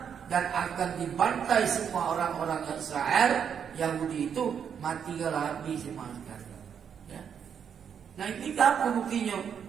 dan akan dibantai semua orang-orang Israel. Yahudi itu mati habis semua sekali. Ya. Nah ini apa buktinya?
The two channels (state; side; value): quieter; left; 7.7 dB